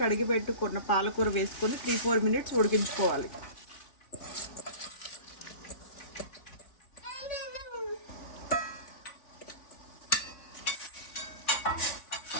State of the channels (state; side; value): late; right; 3.5 ms